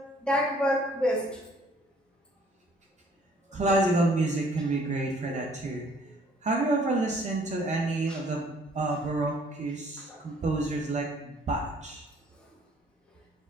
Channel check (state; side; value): normal; both; correlation 0.60